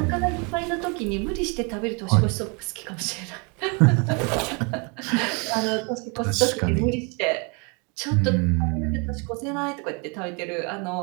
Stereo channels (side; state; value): left; quieter; 32.6 dB